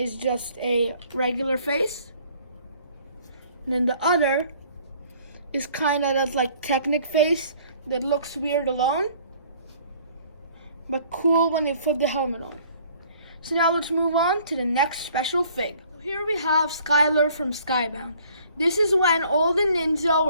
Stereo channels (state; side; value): inverted; both; correlation -0.57